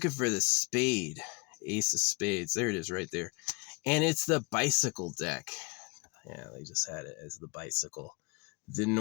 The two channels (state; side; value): quieter; right; 30.1 dB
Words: for the spade. Ace of spades. There it is right there. And it's the bicycle deck. Yeah, they just had it as the bicycle. The